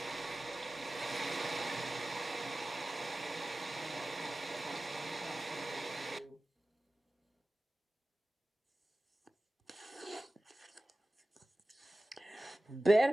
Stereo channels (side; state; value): both; normal; correlation 0.96